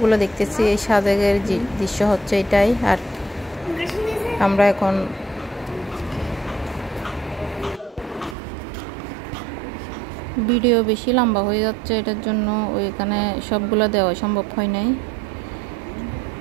দেখতেছি। এই সাজেকের দৃশ্য হচ্ছে এটাই। আর আমরা এখন ভিডিও বেশি লম্বা হয়ে যাচ্ছে, এটার জন্য ওইখানে সবগুলো দেওয়া সম্ভব হয় নাই।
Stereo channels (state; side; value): drops out; left; at 8.3 s